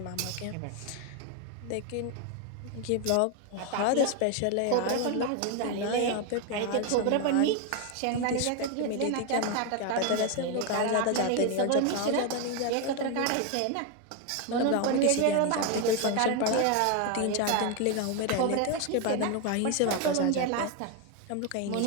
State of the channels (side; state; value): both; different; correlation 0.01